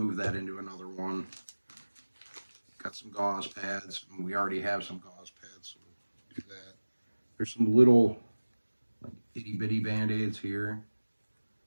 that into another one. Got some gauze pads, and we already have some gauze pads, so we'll do that. There's some little like itty bitty band-aids here.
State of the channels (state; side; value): inverted; both; correlation -1.00